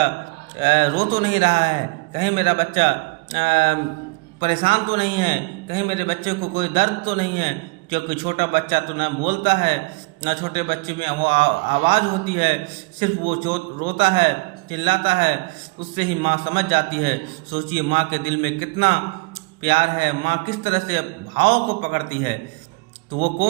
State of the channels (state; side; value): quieter; left; 27.3 dB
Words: रो तो नहीं रहा है, कहीं मेरा बच्चा परेशान तो नहीं है, कहीं मेरे बच्चे को कोई दर्द तो नहीं है। क्योंकि छोटा बच्चा तो ना बोलता है, ना छोटे बच्चे में वो आवाज़ होती है, सिर्फ वो रोता है, चिल्लाता है, उससे ही माँ समझ जाती है। सोचिए माँ के दिल में कितना प्यार है, माँ किस तरह से भाव को पकड़ती है। तो वो